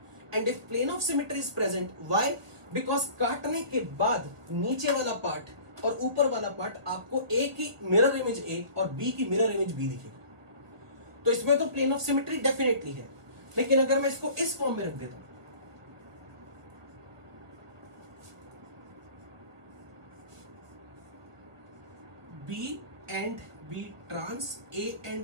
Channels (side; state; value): left; late; 1.2 ms